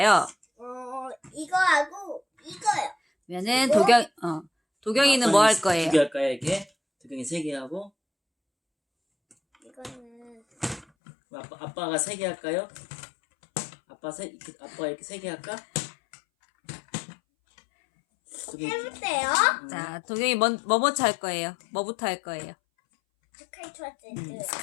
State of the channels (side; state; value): right; drops out; at 10.9 s